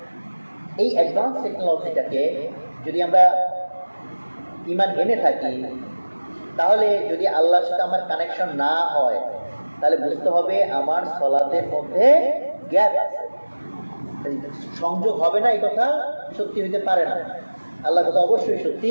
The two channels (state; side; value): inverted; both; correlation -1.00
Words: এই অ্যাডভান্স টেকনোলজিটাকে যদি আমরা ঈমান এনে থাকি, তাহলে যদি আল্লাহর সাথে আমার কানেকশন না হয় তাহলে বুঝতে হবে আমার সালাতের মধ্যে গ্যাপ আছে, সংযোগ হবে না। এই কথা সত্যি হইতে পারে না, আল্লাহর কথা অবশ্যই